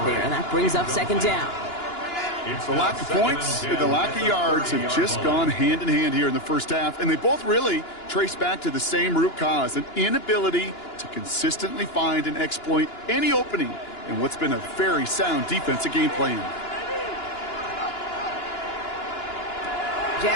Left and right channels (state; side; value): late; right; 2.9 ms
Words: there, and that brings up 2nd down. The lack of points and the lack of yards have just gone hand in hand here in the first half, and they both really trace back to the same root cause, an inability to consistently find and exploit any opening in what's been a very sound defensive game plan.